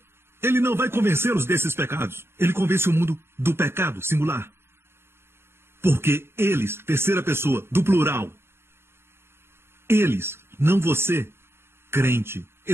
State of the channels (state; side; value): late; left; 0.12 ms